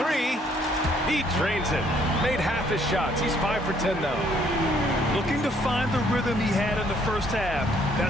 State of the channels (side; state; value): both; normal; correlation 0.65